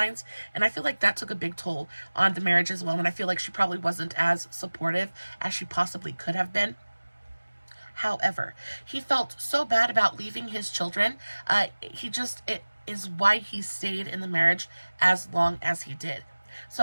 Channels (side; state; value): both; inverted; correlation -1.00